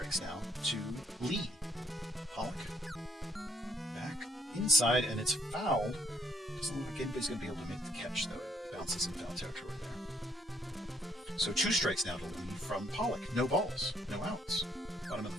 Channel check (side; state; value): both; normal; correlation 0.68